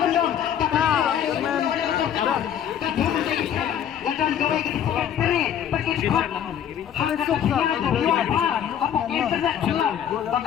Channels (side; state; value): right; quieter; 9.4 dB